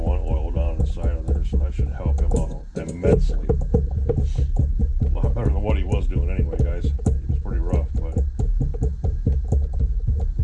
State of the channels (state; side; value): identical; both; correlation 1.00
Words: oil down inside of there, so that should help him out immensely. A lot better than what he was doing anyway, guys. He was pretty rough, but